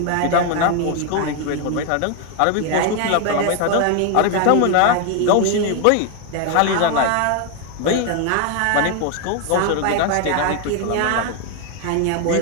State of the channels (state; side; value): different; both; correlation 0.01